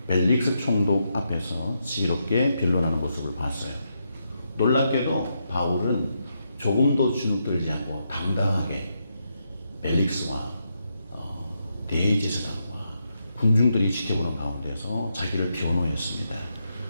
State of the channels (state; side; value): inverted; both; correlation -0.82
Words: 벨릭스 총독 앞에서 지혜롭게 변론하는 모습을 봤어요. 놀랍게도 바울은 조금도 주눅들지 않고 당당하게 벨릭스와 대제사장과 군중들이 지켜보는 가운데서 자기를 변호했습니다.